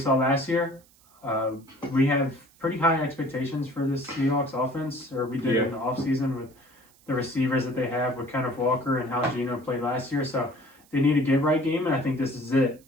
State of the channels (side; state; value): right; noise; hiss, 29 dB below the sound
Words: last year. We have pretty high expectations for this Seahawks offense, or we did in the offseason with the receivers that they have with Kenneth Walker and how Geno played last year. So they need a get-right game, and I think this is it.